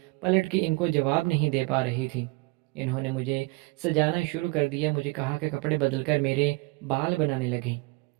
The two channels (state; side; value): quieter; left; 25.5 dB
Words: پلٹ کے ان کو جواب نہیں دے پا رہی تھی۔ انہوں نے مجھے سجانا شروع کر دیا، مجھے کہا کہ کپڑے بدل کر میرے بال بنانے لگیں